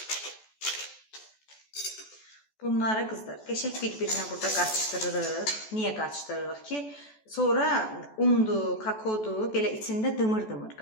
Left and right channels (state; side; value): late; right; 14 ms